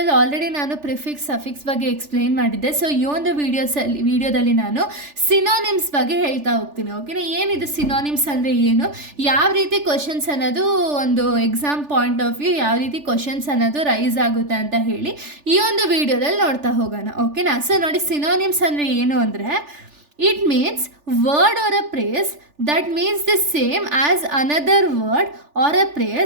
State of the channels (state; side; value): late; left; 3.4 ms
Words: ಆಲ್ರೆಡಿ ನಾನು ಪ್ರಿಫಿಕ್ಸ್ ಸಫಿಕ್ಸ್ ಬಗ್ಗೆ ಎಕ್ಸ್ಪ್ಲೈನ್ ಮಾಡಿದ್ದೆ. ಸೊ ಈ ಒಂದು ವೀಡಿಯೋದಲ್ಲಿ ನಾನು ಸಿನೋನಿಮ್ಸ್ ಬಗ್ಗೆ ಹೇಳ್ತಾ ಹೋಗ್ತೀನಿ. ಓಕೆನಾ, ಏನಿದು ಸಿನೋನಿಮ್ಸ್ ಅಂದರೆ ಏನು, ಯಾವ ರೀತಿ ಕ್ವಶನ್ಸ್ ಅನ್ನೋದು ಒಂದು ಎಕ್ಸಾಮ್ ಪಾಯಿಂಟ್ ಆಫ್ ವ್ಯೂ ಯಾವ ರೀತಿ ಕ್ವಶನ್ಸ್ ಅನ್ನೋದು ರೈಸ್ ಆಗುತ್ತೆ ಅಂತ ಹೇಳಿ ಈ ಒಂದು ವಿಡಿಯೋದಲ್ಲಿ ನೋಡ್ತಾ ಹೋಗೋಣ. ಓಕೆನಾ, ಸೊ ನೋಡಿ, ಸಿನೋನಿಮ್ಸ್ ಅಂದರೆ ಏನು ಅಂದರೆ it means word or a phrase that means the same as another word or a